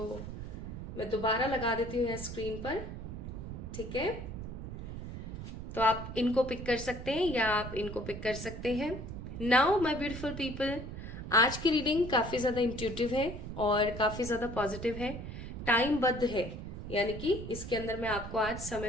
मैं दोबारा लगा देती हूँ स्क्रीन पर, ठीक है? तो आप इनको पिक कर सकते हैं या आप इनको पिक कर सकते हैं। नाउ माय ब्यूटीफुल पीपल, आज की रीडिंग काफी ज्यादा इंट्यूटिव है और काफी ज्यादा पॉजिटिव है, टाइम बद्ध है, यानी कि इसके अंदर मैं आपको आज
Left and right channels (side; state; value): right; noise; rumble, 8 dB below the sound